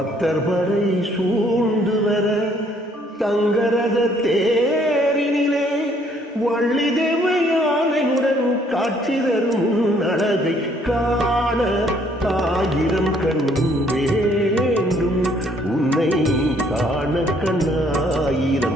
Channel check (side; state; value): both; normal; correlation 0.64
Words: படை சூழ்ந்து வர தங்கரத தேரினிலே வள்ளி தேவையானையுடன் காட்சி தரும் அழகை காண ஆயிரம் கண் வேண்டும், உன்னை காண